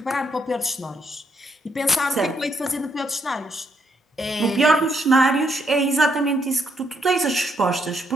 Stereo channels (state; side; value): normal; both; correlation 0.75